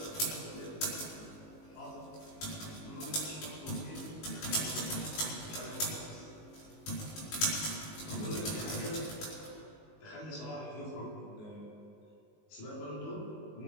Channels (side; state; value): right; late; 19 ms